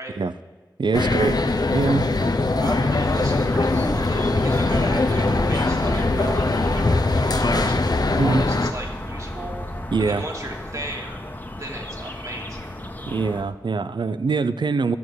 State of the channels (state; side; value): normal; both; correlation 0.78